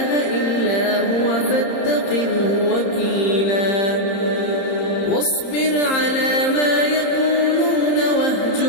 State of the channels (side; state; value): right; late; 30 ms